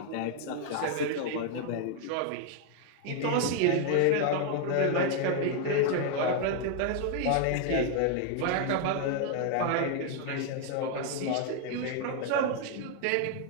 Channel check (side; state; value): both; different; correlation 0.00